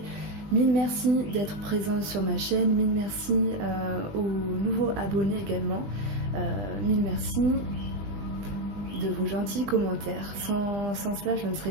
Mille merci d'être présent sur ma chaîne, mille merci aux nouveaux abonnés également. Mille merci de vos gentils commentaires. Sans cela, je ne serais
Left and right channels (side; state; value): left; late; 20 ms